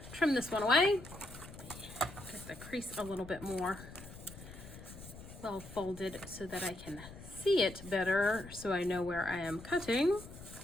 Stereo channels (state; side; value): noise; left; rumble, 15 dB below the sound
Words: trim this one away. Get the crease a little bit more well folded so that I can see it better, so I know where I am cutting.